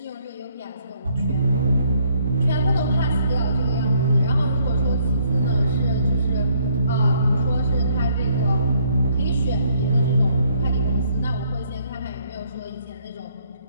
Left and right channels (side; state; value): both; inverted; correlation -0.67